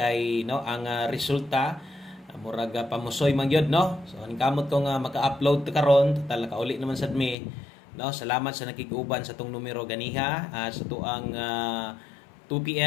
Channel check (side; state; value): right; drops out; at 7.4 s